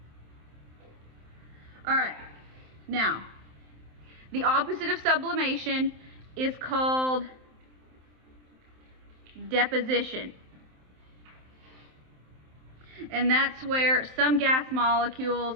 All right, now the opposite of sublimation is called deposition. And that's where some gas molecules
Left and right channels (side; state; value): left; late; 27 ms